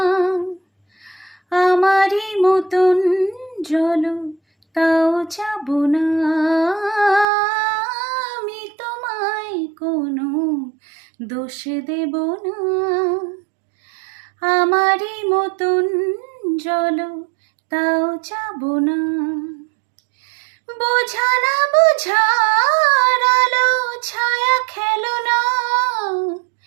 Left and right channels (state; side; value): drops out; left; at 7.2 s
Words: আমারই মতন জল তাও যাব না। আমি তোমায় কোনো দোষ দেব না, আমারই মতন জল তাও যাব না। বোঝা না বোঝার আলো ছায়া খেলো না,